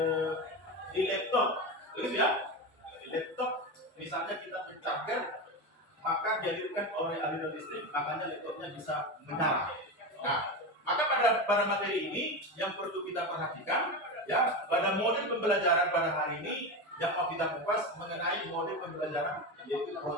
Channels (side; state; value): both; normal; correlation 0.19